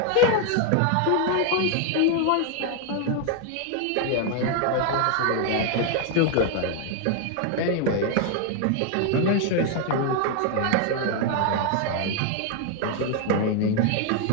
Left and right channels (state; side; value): different; both; correlation 0.00